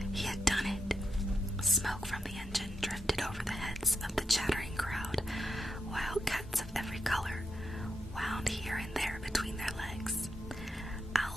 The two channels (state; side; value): normal; both; correlation 0.84